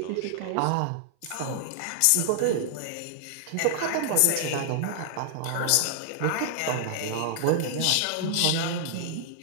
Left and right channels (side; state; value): both; different; correlation -0.01